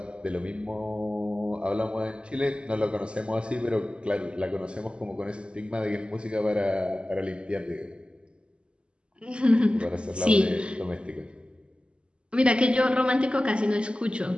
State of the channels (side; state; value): left; late; 0.053 ms